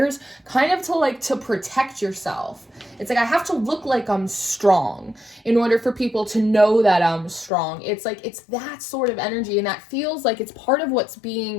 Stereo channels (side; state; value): right; drops out; at 7.5 s